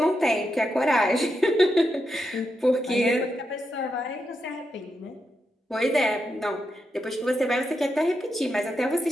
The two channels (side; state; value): both; normal; correlation 0.85